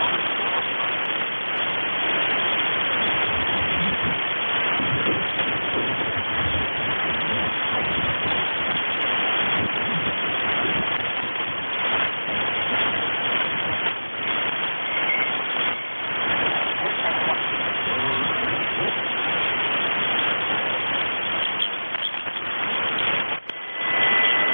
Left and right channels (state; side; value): inverted; both; correlation -1.00